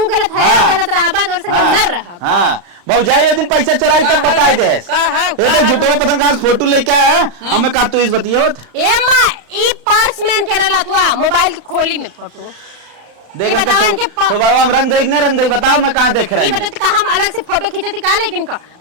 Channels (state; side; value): late; left; 35 ms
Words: गलत है हाँ, गलत रहा बात और संग न रहा हाँ भौजाई वो दिन पैसा चराई तक बताए दे झूठो पता कहाँ से फोटो लेके आया हमें का तू इस बतियावत ए मां ई पर्स मैन के रहला तू मोबाइल की खोली में फोटो देख बताओ इनके तो बाबा हम रंग देख बताओ मैं कहाँ देख रहा ये बता का हम अलग से फोटो खींचती का लेकिन